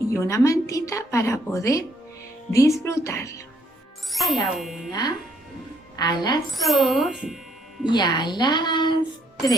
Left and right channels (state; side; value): normal; both; correlation 0.70